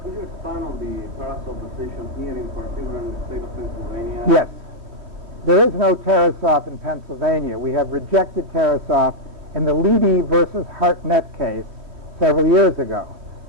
Could you expand on the Tarasoff decision here in particular in the state of Pennsylvania? Yes. There is no Tarasoff in Pennsylvania. We have rejected Tarasoff in the Leedy versus Hartnett case several years ago.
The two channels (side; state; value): left; late; 3.1 ms